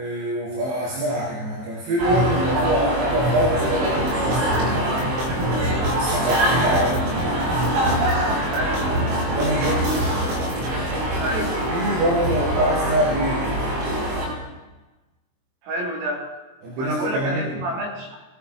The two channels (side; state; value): left; late; 23 ms